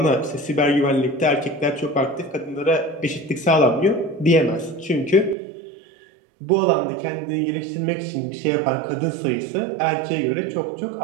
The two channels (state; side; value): drops out; left; at 5.4 s